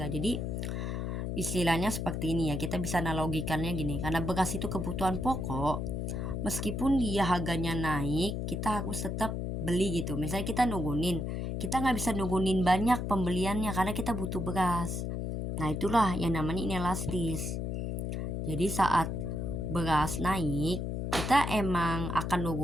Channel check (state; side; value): noise; left; hum, 2 dB below the sound